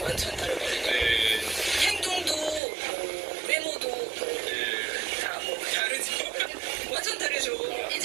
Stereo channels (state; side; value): drops out; left; at 2.6 s